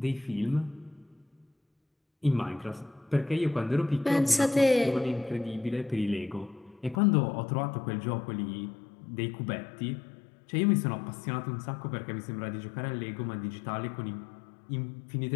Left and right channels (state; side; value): drops out; right; at 7.0 s